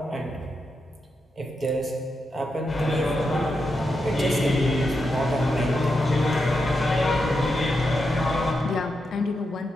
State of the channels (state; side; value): normal; both; correlation 0.86